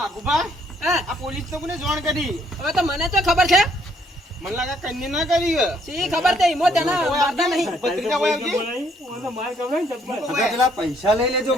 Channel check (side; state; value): both; normal; correlation 0.67